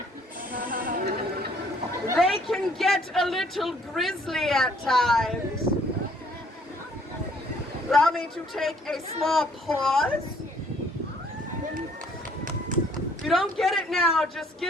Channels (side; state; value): both; normal; correlation 0.62